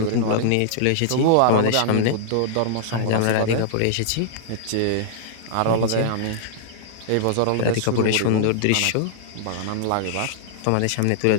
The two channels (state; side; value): different; both; correlation -0.01